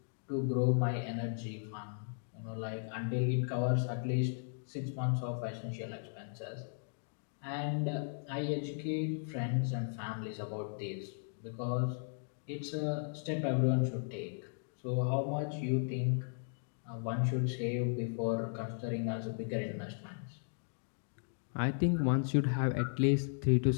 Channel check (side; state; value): right; silent; digital silence